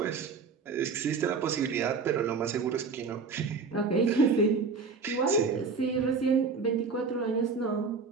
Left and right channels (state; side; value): quieter; left; 4.9 dB